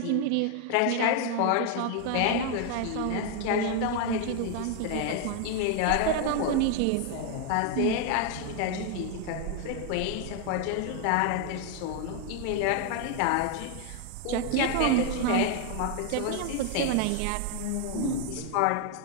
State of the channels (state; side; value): different; both; correlation 0.00